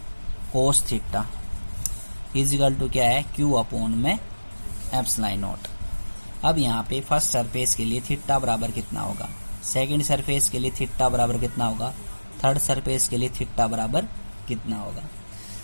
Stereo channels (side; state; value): both; inverted; correlation -1.00